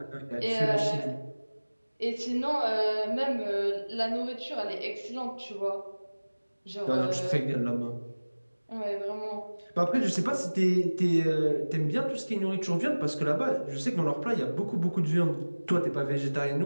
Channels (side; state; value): both; inverted; correlation -1.00